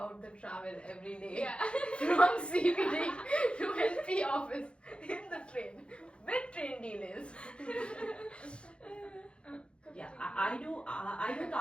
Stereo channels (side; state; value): right; late; 0.057 ms